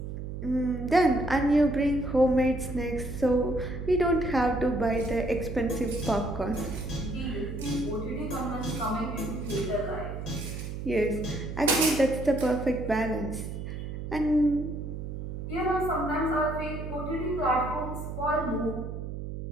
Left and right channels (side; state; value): right; noise; hum, 7 dB below the sound